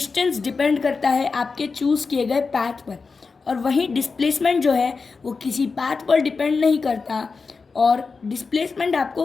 डिपेंड करता है आपके चूज़ किए गए पाथ पर, और वहीं डिस्प्लेसमेंट जो है वो किसी पाथ पर डिपेंड नहीं करता, और डिस्प्लेसमेंट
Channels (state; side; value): quieter; right; 4.6 dB